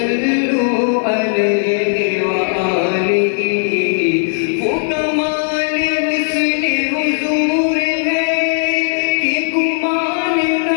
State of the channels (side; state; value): right; silent; 69 dB below the other